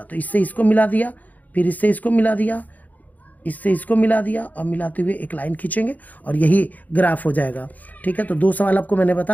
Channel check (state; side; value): late; right; 0.079 ms